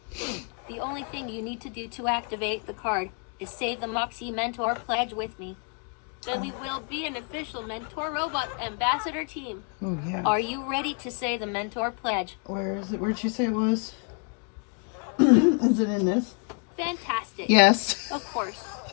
The only thing you need to do to activate the card is say the Moxie Mentor pledge with me. Then we will be an official Mentor Robot Ambassador team. Oh yeah. Are you ready to say the Mentor pledge? Where is it? Where'd you say it was? Is it in this? Fantastic. Yes. Of course.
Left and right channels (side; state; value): right; quieter; 38.7 dB